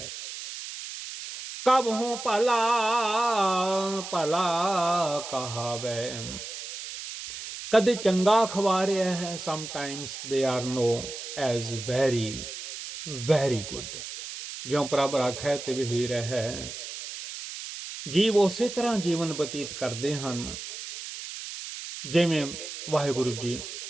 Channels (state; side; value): noise; right; hiss, 9 dB below the sound